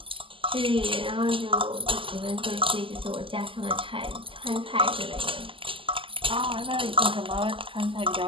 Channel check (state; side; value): late; left; 0.25 ms